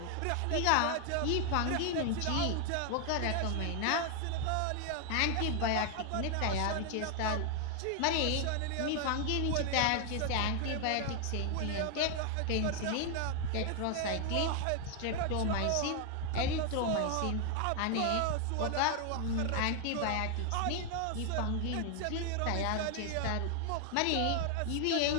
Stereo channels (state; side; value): different; both; correlation 0.01